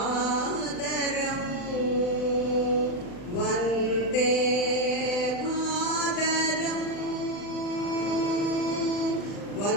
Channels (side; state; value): right; late; 40 ms